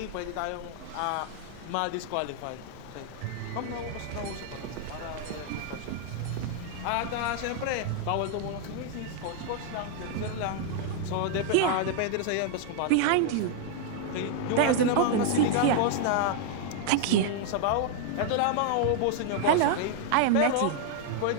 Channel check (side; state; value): both; different; correlation 0.00